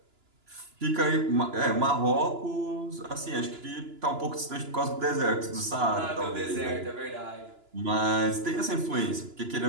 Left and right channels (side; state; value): left; late; 2.9 ms